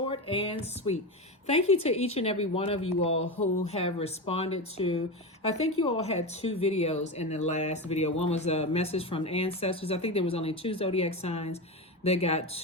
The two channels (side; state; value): both; normal; correlation 0.19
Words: and sweet. Thank you to each and every one of you all who have responded to, I think you all had 2 videos in the last video. One was a message from ancestors. I think there was only 2 zodiac signs that got